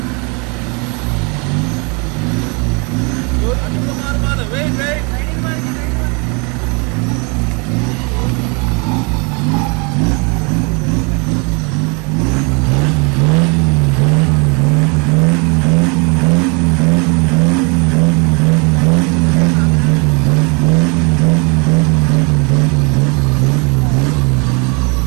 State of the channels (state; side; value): quieter; left; 32.4 dB